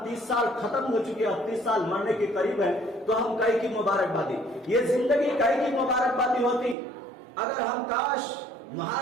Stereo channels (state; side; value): drops out; left; at 6.8 s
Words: 30 سال ختم ہو چکے، اب 30 سال مرنے کے قریب ہے. تو ہم کئی کی مبارکبادی، یہ زندگی کئی کی مبارکبادی ہوتی. اگر ہم کاش